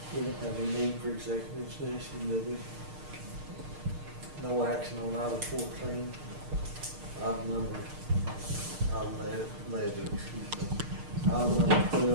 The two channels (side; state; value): left; late; 6.6 ms